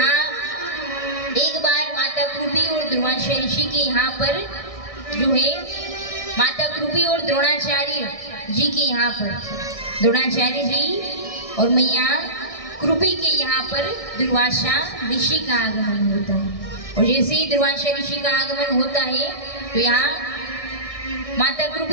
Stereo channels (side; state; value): right; late; 1.6 ms